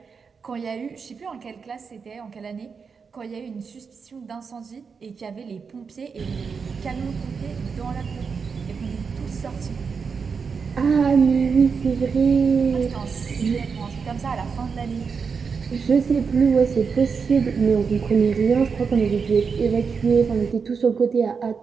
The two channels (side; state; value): left; quieter; 5.6 dB